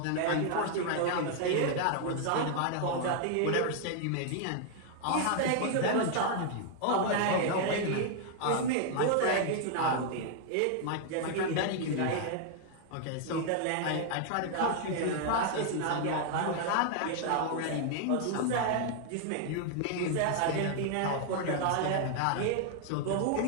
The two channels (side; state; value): both; different; correlation 0.00